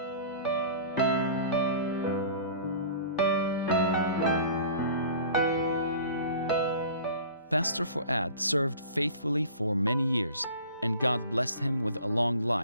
Pastor Fuad served faithfully for many years, and God blessed him with a long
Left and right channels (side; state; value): both; inverted; correlation -0.44